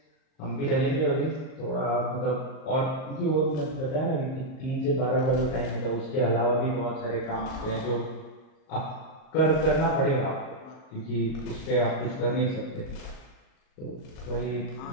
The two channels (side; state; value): right; late; 38 ms